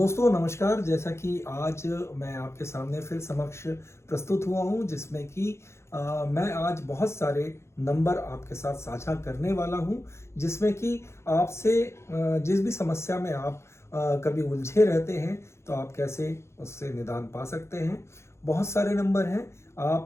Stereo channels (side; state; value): right; late; 0.13 ms